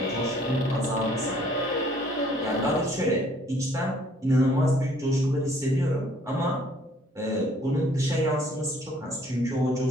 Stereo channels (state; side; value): normal; both; correlation 0.60